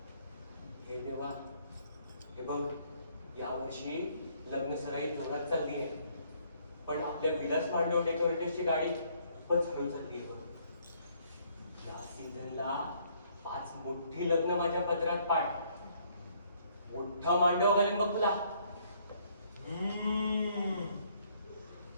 हे देवा, हे बघ यावर्षी लग्न सराई जोरात चालली आहे, पण आपल्या विलास मांडव डेकोरेटर्सची गाडी खूपच हळू चालली आहे बघ. या सीझनला 5 मोठी लग्न माझ्या पदरात पाड. मोठा मांडव घालेन बघ तुला.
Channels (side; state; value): both; inverted; correlation -0.66